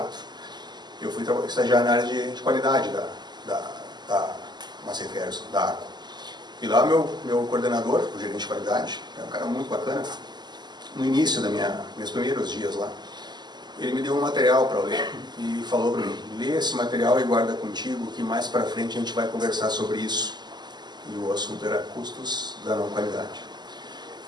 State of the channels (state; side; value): late; left; 0.21 ms